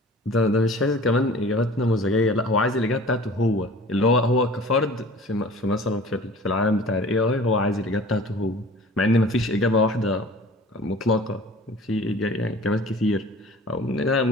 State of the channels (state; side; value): normal; both; correlation 0.45